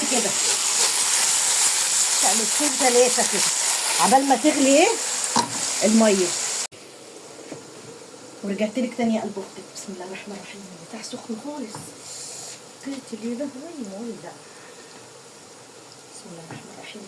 كده تقلبتين ثلاثه كده عبال ما تغلي ايه الميه. ورجعت لك تاني قلب اختك. بسم الله الرحمن الرحيم. بتاع سخن خالص. قلت لي ده وين ده. بسم الله الرحمن الرحيم.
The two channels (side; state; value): both; identical; correlation 1.00